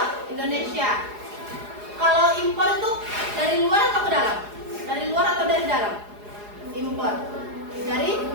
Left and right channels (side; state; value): left; late; 4.8 ms